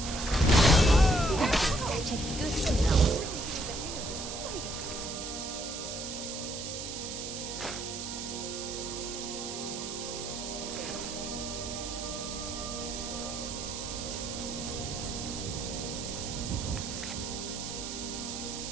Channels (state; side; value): noise; right; hiss, 6 dB below the sound